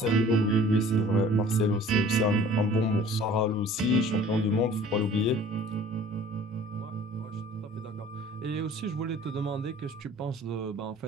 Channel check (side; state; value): both; normal; correlation 0.49